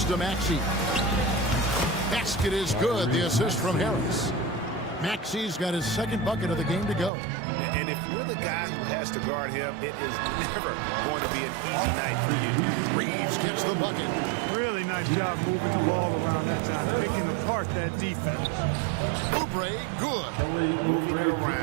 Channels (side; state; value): left; drops out; at 7.1 s